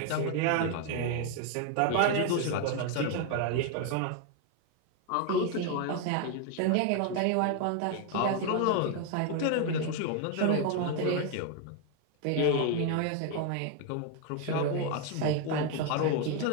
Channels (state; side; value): different; both; correlation 0.01